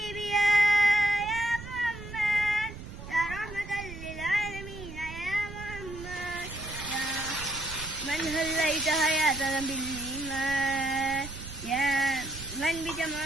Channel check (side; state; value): right; noise; rumble, 12 dB below the sound